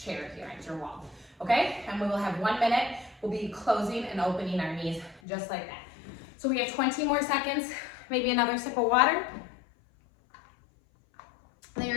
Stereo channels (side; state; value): right; drops out; at 5.2 s